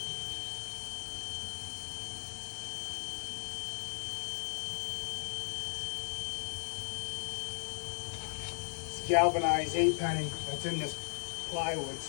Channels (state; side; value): silent; right; 53 dB below the other